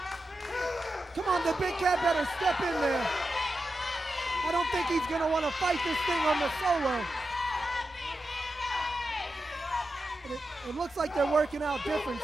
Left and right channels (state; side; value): normal; both; correlation 0.90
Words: Come on, the big cat better step in there. I don't think he's going to want to fight this thing on the solo. It looks like they're working out